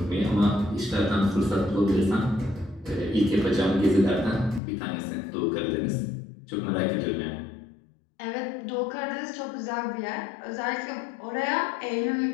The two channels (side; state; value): right; drops out; at 4.6 s